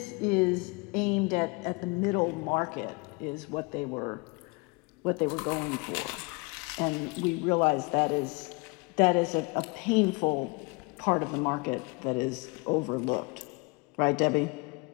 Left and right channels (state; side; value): quieter; right; 28.7 dB